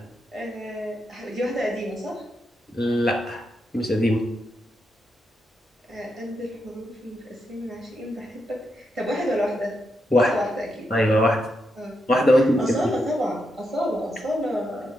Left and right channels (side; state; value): both; normal; correlation 0.83